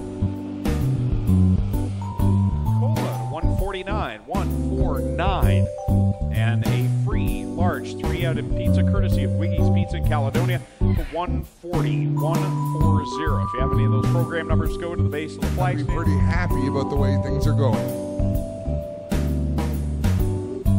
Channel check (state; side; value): identical; both; correlation 1.00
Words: 149, and a free large 3-outed pizza courtesy of Wiggy's Pizza in Caledonia for 140. If you have any of those program numbers, go to the base of the flag stand. Pretty happy about the way things are going.